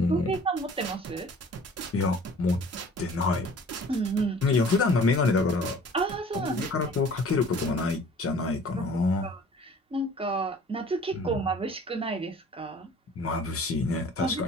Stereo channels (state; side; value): normal; both; correlation 0.49